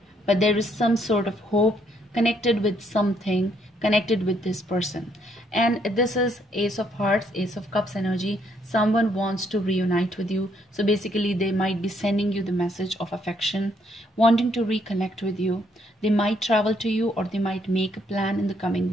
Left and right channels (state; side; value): normal; both; correlation 0.71